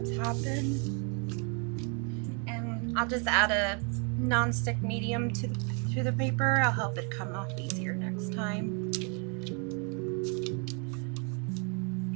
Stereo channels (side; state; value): left; quieter; 37.6 dB